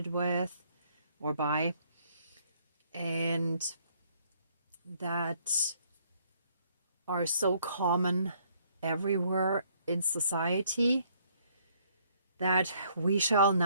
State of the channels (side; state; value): both; inverted; correlation -0.66